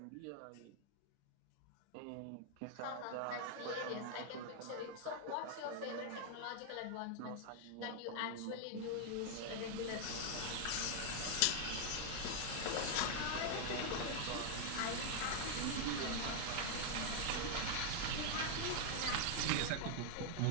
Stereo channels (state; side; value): different; both; correlation 0.00